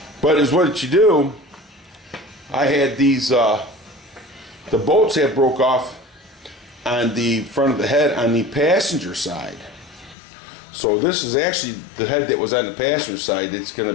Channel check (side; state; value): right; drops out; at 10.2 s